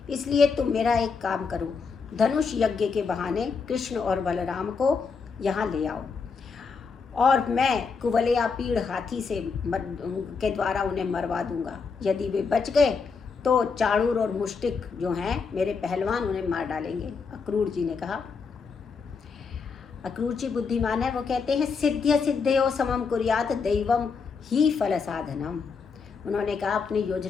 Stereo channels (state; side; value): quieter; right; 5.2 dB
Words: इसलिए तुम मेरा एक काम करो, धनुष यज्ञ के बहाने कृष्ण और बलराम को यहाँ ले आओ और मैं कुवलया पीड़ हाथी से के द्वारा उन्हें मरवा दूंगा। यदि वे बच गए तो चाणूर और मुष्टिक जो हैं मेरे पहलवान उन्हें मार डालेंगे। अक्रूर जी ने कहा। अक्रूर जी बुद्धिमान है, वो कहते हैं, सिद्ध्य सिद्धयो समम कुर्यात दैवम ही फल साधनम। उन्होंने कहा, अपनी